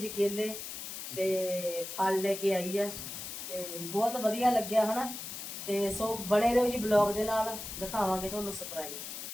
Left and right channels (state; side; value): noise; left; hiss, 8 dB below the sound